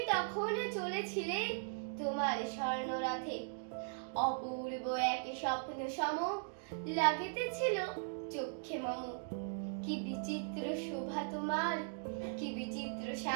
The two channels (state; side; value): silent; left; digital silence